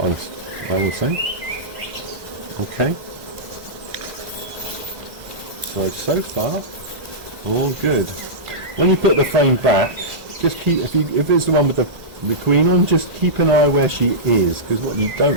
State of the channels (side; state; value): left; late; 2.0 ms